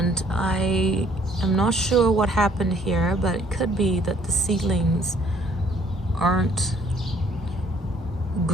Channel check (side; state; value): both; normal; correlation 0.61